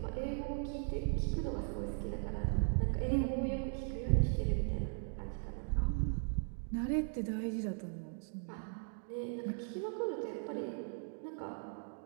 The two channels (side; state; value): left; silent; 52 dB below the other